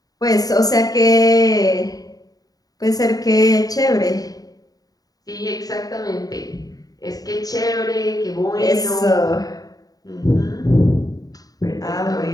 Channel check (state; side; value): late; right; 0.18 ms